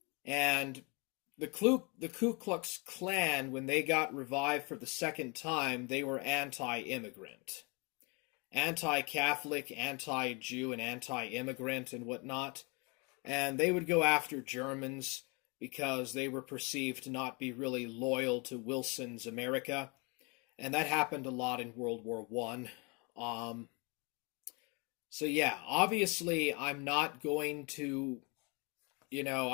and the Ku Klux Klan, when they got revived for the second time, they were anti-immigrant. Anti-Catholic, anti-Jew, and anti-immigrant and whatnot. And they would go after Germans because they were perceived to not be really loyal to Wilson's America. And that happened a lot in World War I. So yeah, obviously I'm not going to,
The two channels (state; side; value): quieter; right; 30.8 dB